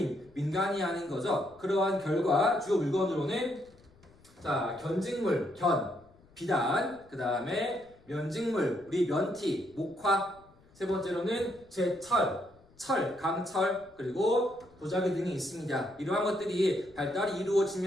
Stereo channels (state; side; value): noise; left; rumble, 28 dB below the sound